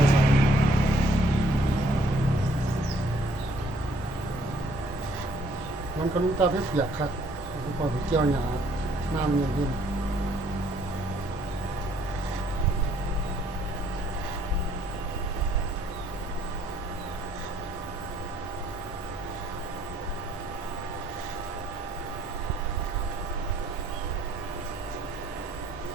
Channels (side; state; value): both; normal; correlation 0.63